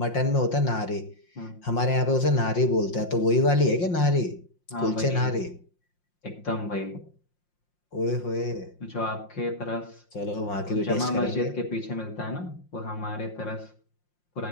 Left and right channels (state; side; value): late; right; 5.7 ms